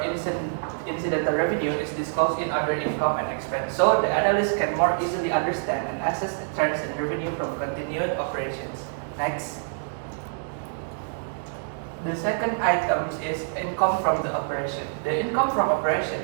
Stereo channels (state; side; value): silent; left; digital silence